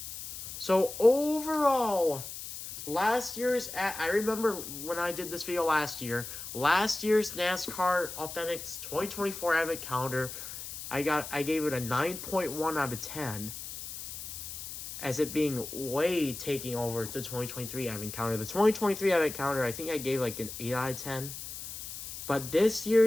So overall, last year's, I remember when I did this video last year's NASCAR Authentics 2024 Advent Calendar, I gave it a 9.1 out of 10, as it being way taking over the 2023 Advent Calendar. The 2023 Advent Calendar, I think I gave like an 8 out of 10. But this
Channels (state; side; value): noise; left; hiss, 9 dB below the sound